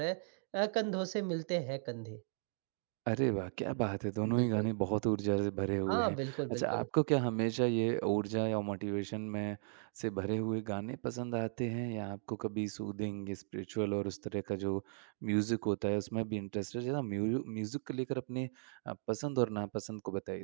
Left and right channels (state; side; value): silent; left; digital silence